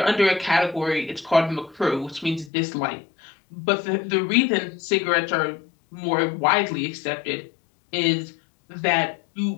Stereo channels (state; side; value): drops out; right; at 2.5 s